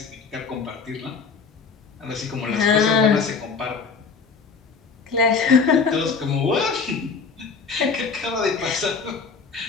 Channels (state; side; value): quieter; right; 5.3 dB